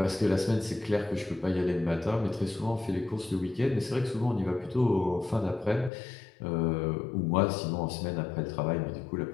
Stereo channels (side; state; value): right; drops out; at 5.9 s